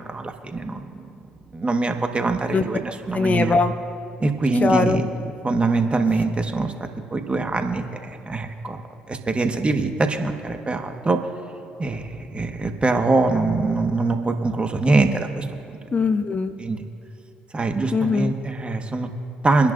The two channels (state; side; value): normal; both; correlation 0.82